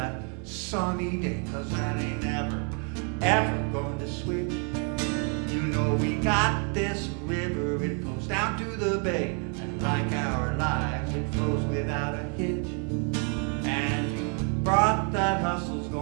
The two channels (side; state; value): left; quieter; 38.8 dB